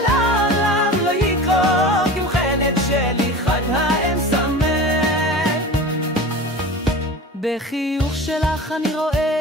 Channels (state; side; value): normal; both; correlation 0.34